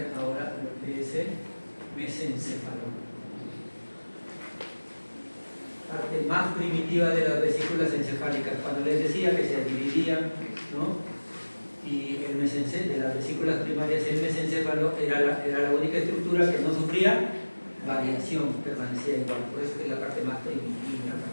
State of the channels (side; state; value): both; inverted; correlation -1.00